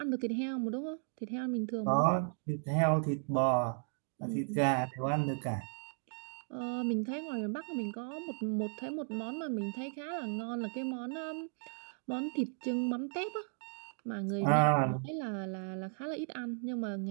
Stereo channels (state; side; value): silent; left; 54 dB below the other